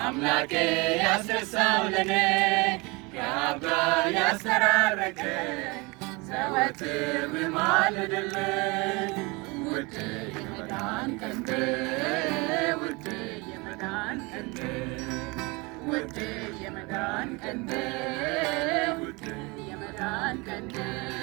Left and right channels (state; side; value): quieter; left; 26.6 dB